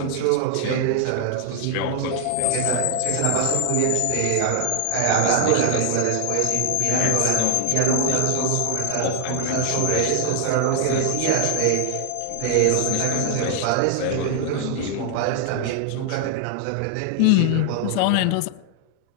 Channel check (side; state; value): both; different; correlation 0.00